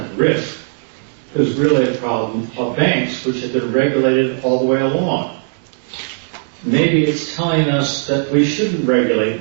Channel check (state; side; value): silent; left; digital silence